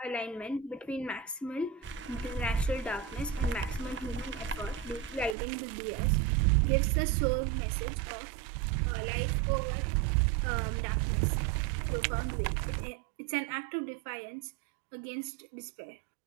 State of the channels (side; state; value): left; drops out; at 5.4 s